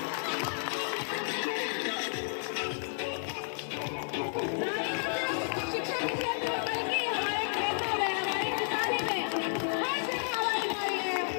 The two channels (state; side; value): silent; right; 56 dB below the other